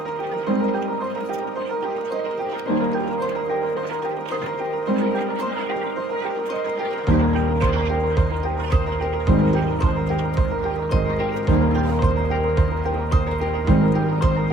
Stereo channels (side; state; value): both; normal; correlation 0.67